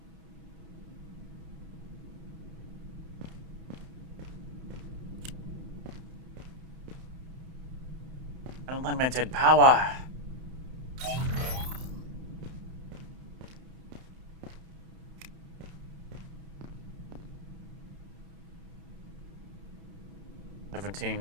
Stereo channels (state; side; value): late; left; 31 ms